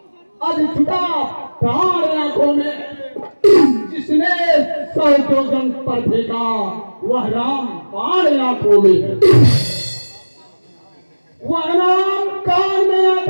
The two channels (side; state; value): both; inverted; correlation -1.00